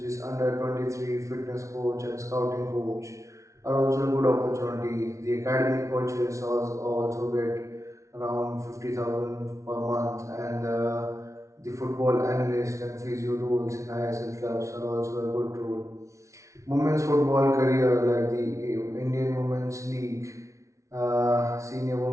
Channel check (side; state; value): left; late; 0.14 ms